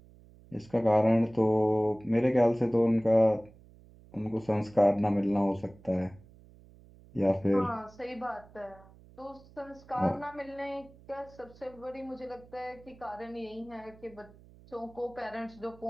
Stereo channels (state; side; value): noise; right; hum, 24 dB below the sound